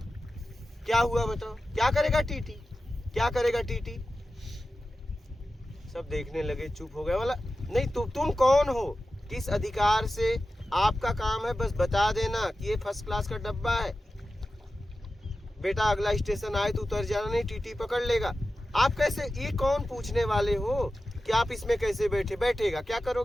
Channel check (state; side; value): normal; both; correlation 0.93